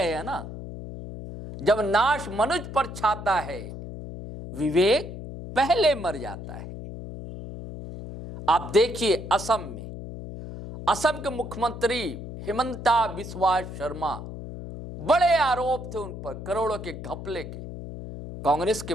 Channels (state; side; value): noise; left; hum, 10 dB below the sound